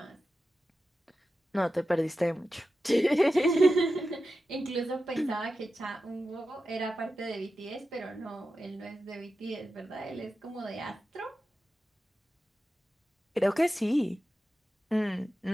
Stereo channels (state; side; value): normal; both; correlation 0.92